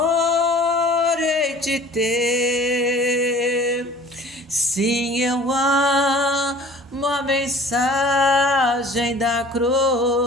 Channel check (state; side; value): normal; both; correlation 0.47